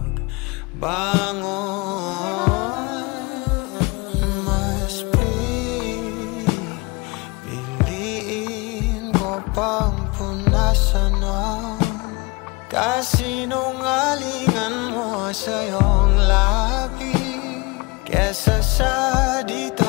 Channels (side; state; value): right; quieter; 26.0 dB